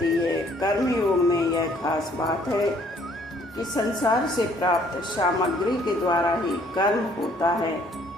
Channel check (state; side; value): normal; both; correlation 0.61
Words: है। कर्म योग में यह खास बात है कि संसार से प्राप्त सामग्री के द्वारा ही कर्म होता है,